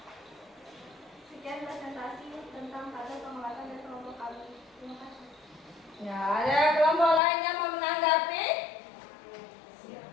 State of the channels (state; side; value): drops out; right; at 7.2 s